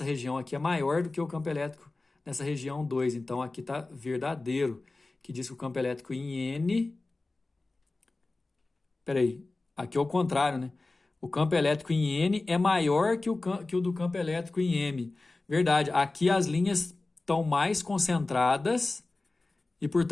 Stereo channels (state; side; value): quieter; right; 3.3 dB